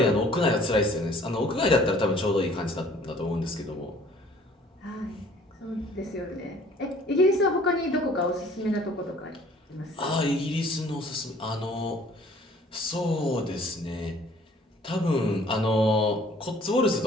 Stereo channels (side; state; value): both; normal; correlation 0.55